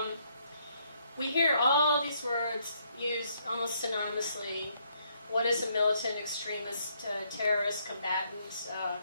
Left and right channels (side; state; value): both; inverted; correlation -0.71